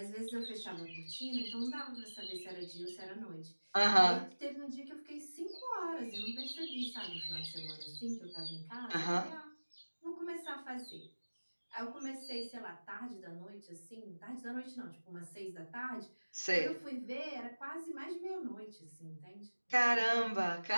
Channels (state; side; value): inverted; both; correlation -1.00